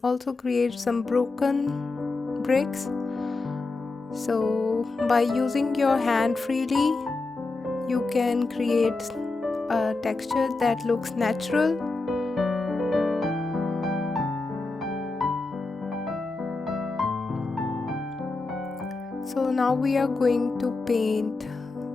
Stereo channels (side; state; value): right; quieter; 3.5 dB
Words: also create some broken bricks. So by using your hand freely, you can create a texture that looks natural. So now we are going to paint